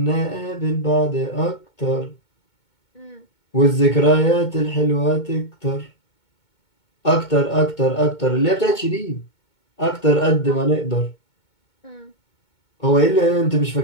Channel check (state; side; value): late; right; 2.2 ms